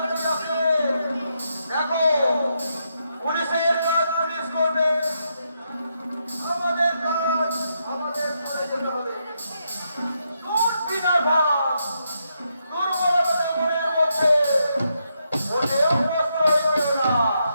দেখো, পুলিশের কাজ পুলিশ করবে, আমাদের কাজ আমাদের করে যেতে হবে। তোর বিনার ভাব দুর্বলতা মনের মধ্যে ওদেরও প্রশ্রয় পেল না।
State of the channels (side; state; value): both; inverted; correlation -0.81